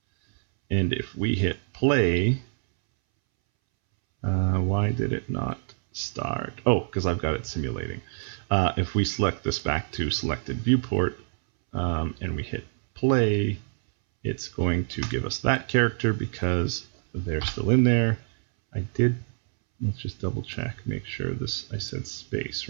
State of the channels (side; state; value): left; silent; 61 dB below the other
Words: And if we hit play, why did it not start? Oh, because I've got it simulating. If we select this back to selected viewport and we hit play, it's going to give us that character because they're still in there. Let's just double check, make sure this, I said space,